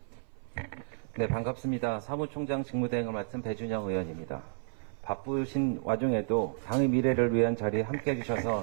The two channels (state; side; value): silent; left; 57 dB below the other